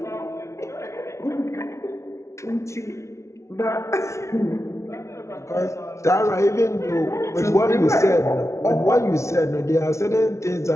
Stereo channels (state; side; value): late; right; 0.14 ms